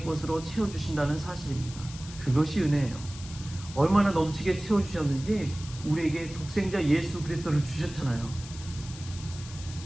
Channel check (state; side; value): noise; left; hiss, 15 dB below the sound